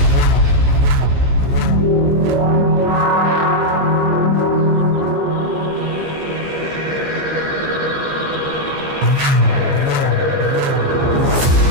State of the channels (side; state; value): left; late; 15 ms